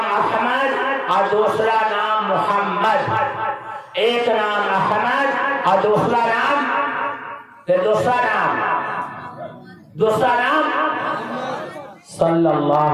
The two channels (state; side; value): identical; both; correlation 1.00